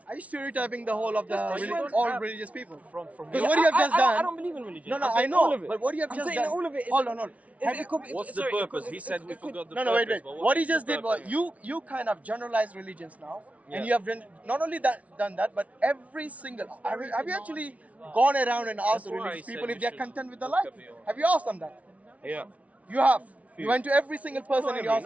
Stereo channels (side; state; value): left; late; 0.067 ms